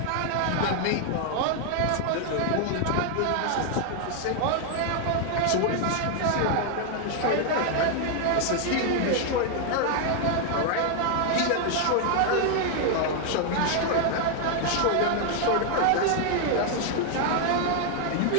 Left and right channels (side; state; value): both; different; correlation 0.00